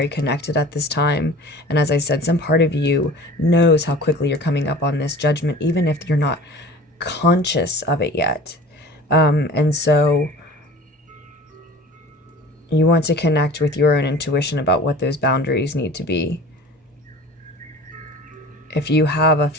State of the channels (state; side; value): normal; both; correlation 0.42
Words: connected at this time. And as I said, some part of you knows how quickly you're coming up on this judgment, even if you're not conscious of it yet. And so you want to connect with your own intuition about what those boundaries need to be. If you have a